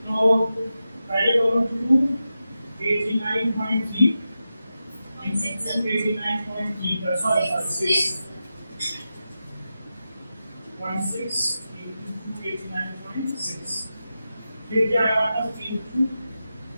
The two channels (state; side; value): inverted; both; correlation -0.91